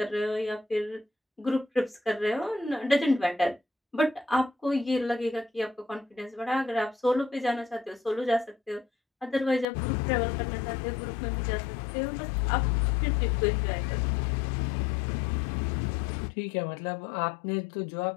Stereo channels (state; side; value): drops out; right; at 9.7 s